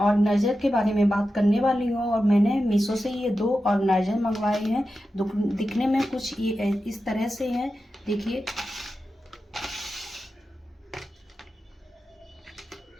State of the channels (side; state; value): both; normal; correlation 0.91